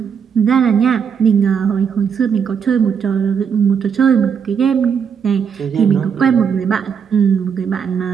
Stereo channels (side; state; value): left; quieter; 7.0 dB